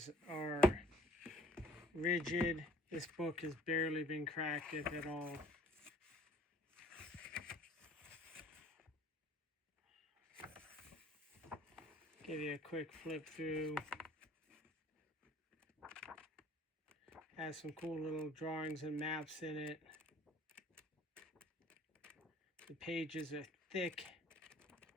are rigid. This book has barely been cracked, if at all. Give you a quick flip through. Has some cool little drawings and maps in it. The pages are thick.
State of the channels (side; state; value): both; normal; correlation 0.55